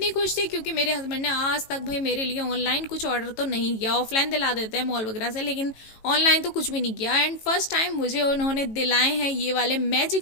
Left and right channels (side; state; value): right; late; 18 ms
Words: खुश थी क्योंकि मेरे हस्बैंड ने आज तक भाई मेरे लिए ऑनलाइन कुछ ऑर्डर तो नहीं किया। ऑफलाइन दिला देते हैं मॉल वगैरह से, लेकिन ऑनलाइन तो कुछ भी नहीं किया। एंड फर्स्ट टाइम मुझे उन्होंने दिलाए हैं ये वाले